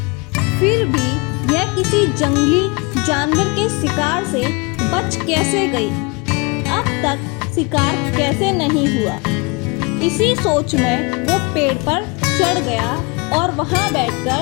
फिर भी यह किसी जंगली जानवर के शिकार से बच कैसे गई? अब तक शिकार कैसे नहीं हुआ? इसी सोच में वो पेड़ पर चढ़ गया और वहाँ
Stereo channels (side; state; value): right; quieter; 29.1 dB